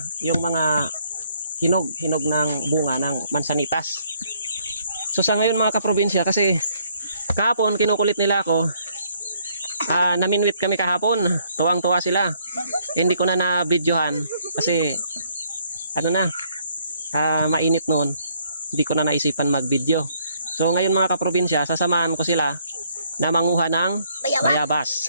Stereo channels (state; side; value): inverted; both; correlation -0.67